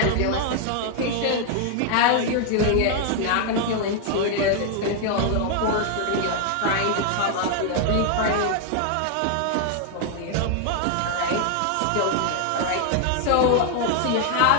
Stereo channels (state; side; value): different; both; correlation 0.00